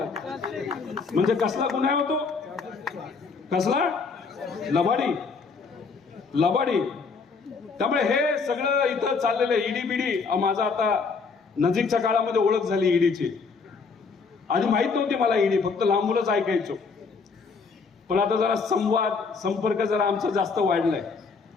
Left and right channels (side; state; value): right; quieter; 4.9 dB